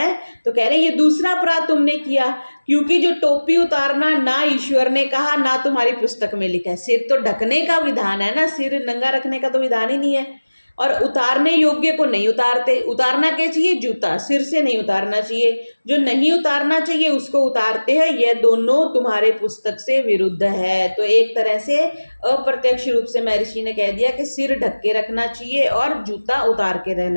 तो कह रहे हैं ये दूसरा अपराध तुमने किया, क्योंकि जो टोपी उतारना ना ईश्वर ने कहा ना तुम्हारी पुस्तक में लिखा है। सिर तो ढकने का विधान है ना, सिर नंगा रखने का तो विधान ही नहीं है। और उतारने योग्य को नहीं उतारते। उतारना क्या चाहिए? जूता, सिर से नहीं उतारना चाहिए। जो नहीं उतारना चाहिए उसको उतारते हैं। यह दोनों तुम्हारे पुस्तक से विरुद्ध है। तो एक तरह से अप्रत्यक्ष रूप से महर्षि ने कह दिया कि सिर ढक के रखना चाहिए और जूता उतार के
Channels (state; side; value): inverted; both; correlation -1.00